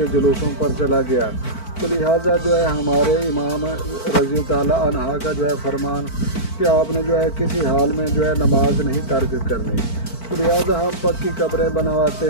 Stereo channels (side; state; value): right; late; 4.5 ms